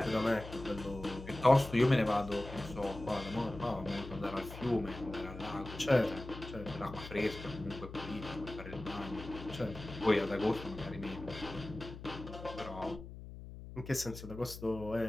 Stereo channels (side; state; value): left; noise; hum, 12 dB below the sound